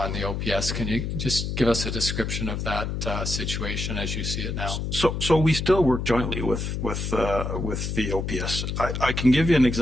and the OPS. Can you just give us a description of that situation as you see it now? So we still work jointly with the OPS. I can give you an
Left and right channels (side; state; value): left; noise; hum, 3 dB below the sound